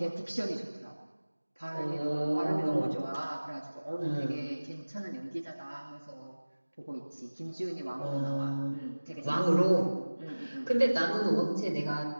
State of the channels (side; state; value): both; inverted; correlation -1.00